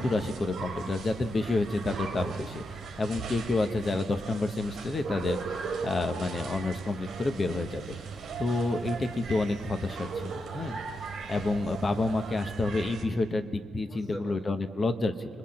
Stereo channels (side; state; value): both; normal; correlation 0.86